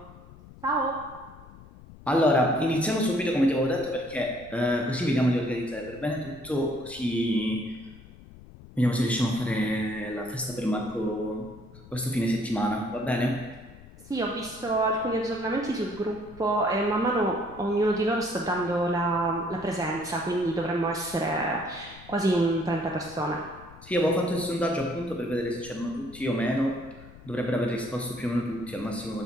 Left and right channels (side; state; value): left; noise; rumble, 19 dB below the sound